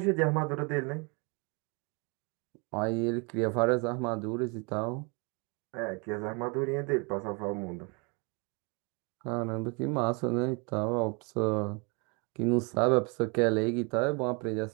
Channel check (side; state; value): left; quieter; 32.0 dB